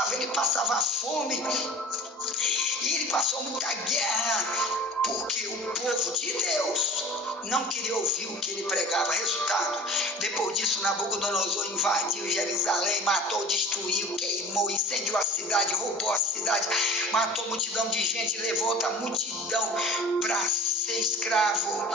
ele passava fome, e ele passou muita guerra, porque o povo de Deus não queria ouvir o que ele pregava. Resultado, depois disso Nabucodonosor invadiu Jerusalém, matou, destruiu, queimou, incendiou a cidade, roubou a cidade, matou multidão de gente, levou outra multidão para ser escravo,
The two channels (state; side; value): normal; both; correlation 0.37